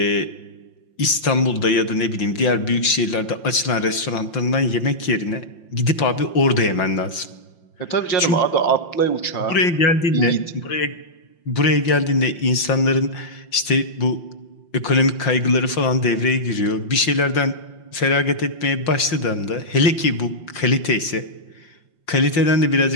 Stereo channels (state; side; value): late; right; 5.7 ms